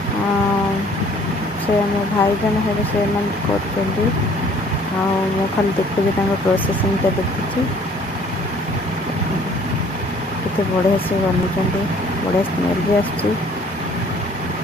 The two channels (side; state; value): both; normal; correlation 0.56